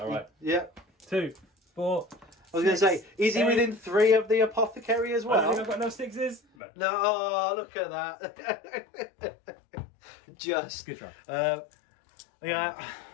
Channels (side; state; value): right; drops out; at 6.4 s